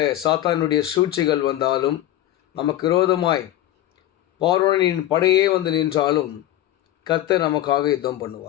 சாத்தானுடைய சூழ்ச்சிகள் வந்தாலும், நமக்கு விரோதமாய் பார்வோனின் படையே வந்து நின்றாலும் கர்த்தர் நமக்காக யுத்தம்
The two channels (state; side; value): quieter; right; 13.5 dB